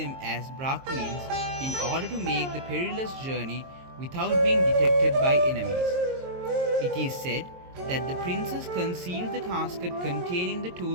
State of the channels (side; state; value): left; late; 22 ms